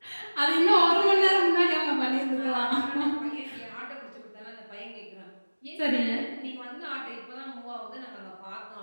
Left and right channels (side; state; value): both; inverted; correlation -1.00